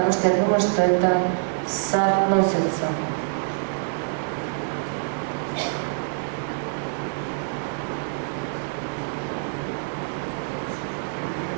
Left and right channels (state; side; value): silent; left; 61 dB below the other